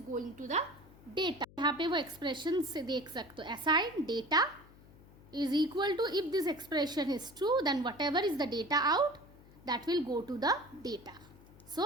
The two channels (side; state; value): left; noise; hum, 23 dB below the sound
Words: going to the data. यहाँ पे वो एक्सप्रेशन से देख सकते हो, assign data is equal to, if this expression is true then whatever is the data out that will go to the data.